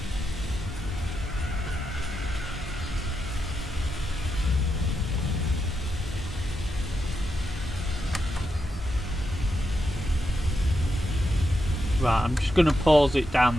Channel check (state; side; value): normal; both; correlation 0.85